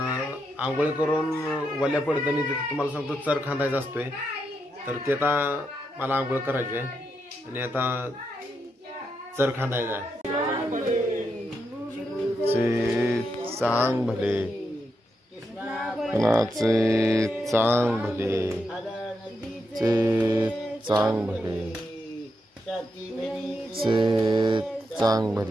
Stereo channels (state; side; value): normal; both; correlation 0.83